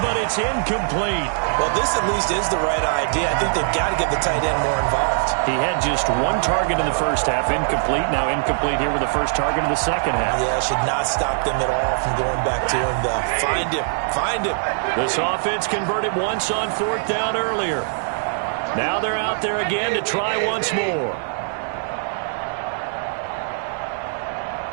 but it's incomplete. Well, this at least is the right idea. I think they've got to get the tight end more involved. He had just 1 target in the first half, incomplete. Now incomplete here with the first target in the second half. Yeah, should not stop them at all from going back to him, though. Find him. Find him. This offense converted once on 4th down earlier. Now they're out there again to try once more.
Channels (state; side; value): silent; left; digital silence